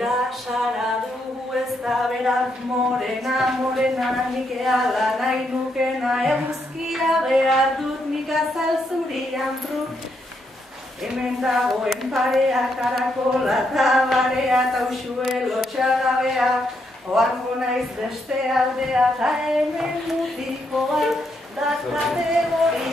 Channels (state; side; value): normal; both; correlation 0.78